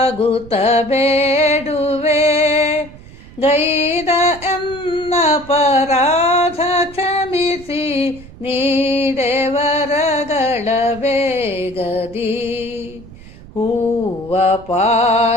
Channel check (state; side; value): noise; right; rumble, 19 dB below the sound